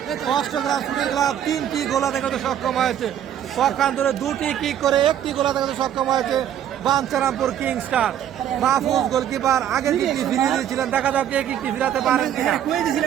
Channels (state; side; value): quieter; left; 10.3 dB